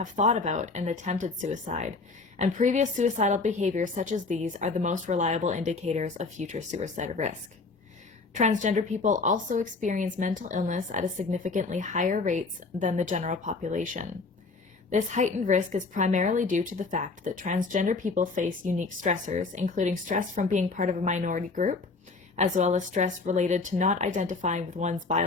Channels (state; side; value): quieter; right; 4.0 dB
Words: thought about and attempted suicide, and previous suicidal behaviors such as these are the most reliable indicators of future suicide risk. Transgender people also experience mental illness at a significantly higher rates than the general population. This heightened risk is primarily due to the fact that transgender people face unique stressors, including stress from being part of a minority group, as well as stress related to not identifying with one's